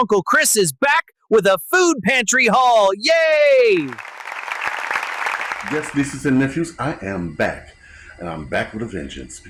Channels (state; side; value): identical; both; correlation 1.00